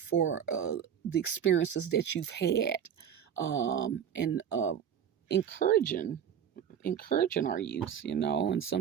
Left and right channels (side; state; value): left; quieter; 8.7 dB